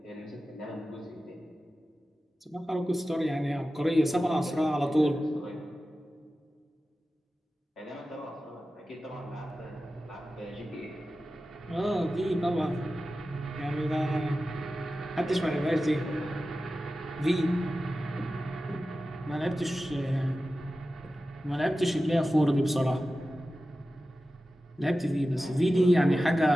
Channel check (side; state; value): both; normal; correlation 0.94